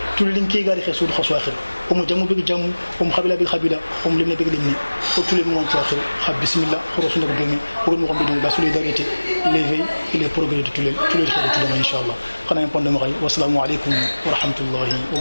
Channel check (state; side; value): inverted; both; correlation -1.00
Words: tulin ke gari khasu khasu akhir o mo jamu bi jamu o mo khabila bi khabila o mo limne bi limne o tulin mo to akhir khab bismillah khorosu ndak domi o mo ko la solidarité l'éveil et le progrès de tulil khadu inshallah khana en pondé mo kay wassalamu alaykum wa rahmatullahi wa